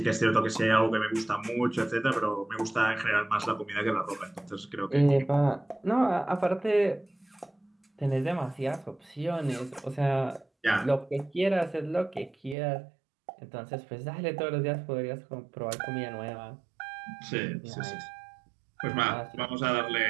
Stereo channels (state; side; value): drops out; left; at 12.6 s